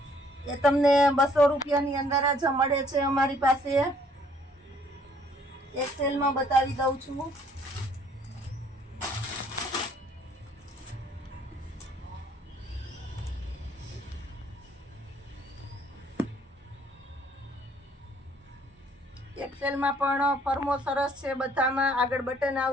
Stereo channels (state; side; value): normal; both; correlation 0.62